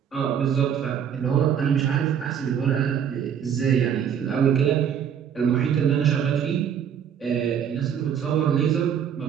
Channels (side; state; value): left; quieter; 8.4 dB